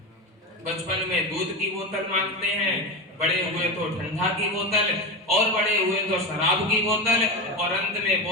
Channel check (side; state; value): both; normal; correlation 0.19